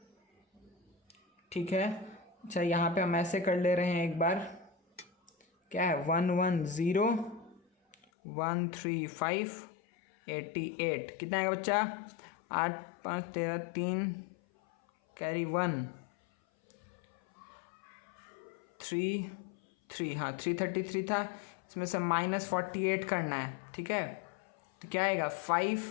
ठीक है। अच्छा यहाँ पे हम ऐसे कर ले रहे हैं एक बार, क्या है 110 135 88 कितना है बच्चा 8 5 13 3 कैरी 1 3 हाँ 333 था, इसमें से -48 करना है, ठीक है। तो क्या आएगा 5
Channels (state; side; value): drops out; right; at 8.0 s